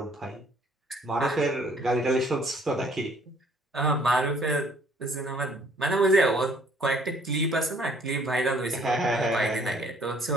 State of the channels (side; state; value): both; normal; correlation 0.61